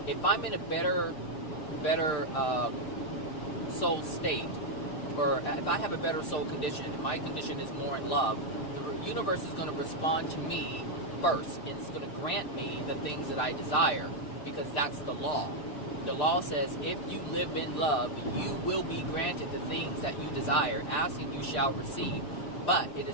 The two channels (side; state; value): right; late; 6.8 ms